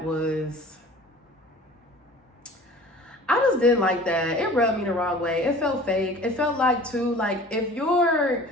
was... I just didn't like that. It rubbed me the wrong way. It felt fake. It felt like, too, like, if your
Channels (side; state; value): both; normal; correlation 0.44